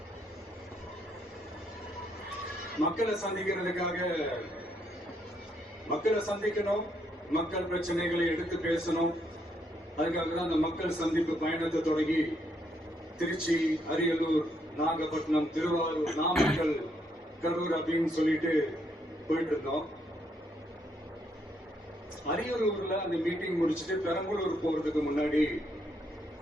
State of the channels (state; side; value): normal; both; correlation 0.74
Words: மக்களை சந்திக்கணும், மக்கள் பிரச்சனைகளை எடுத்து பேசணும். அதுக்காக தான் அந்த மக்கள் சந்திப்பு பயணத்தை தொடங்கி திருச்சி, அரியலூர், நாகப்பட்டினம், திருவாரூர், நாமக்கல், கரூர் அப்படின்னு சொல்லிட்டு போயிட்டு இருந்தோம். அரியலூர்ல அந்த மீட்டிங் முடிச்சுட்டு பெரம்பலூர் போறதுக்கு முன்னாடி